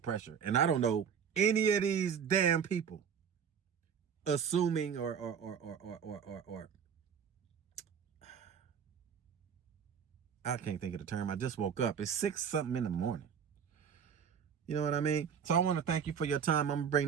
And I don't know any of these damn people assuming or I can't think of the term. I just woke up. It's 6 something in the morning. You know what I mean? So I want to thank you for your time. I'm going to bring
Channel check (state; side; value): quieter; left; 7.4 dB